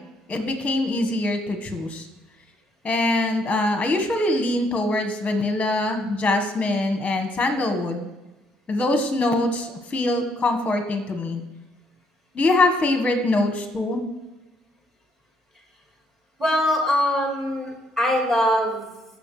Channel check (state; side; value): normal; both; correlation 0.71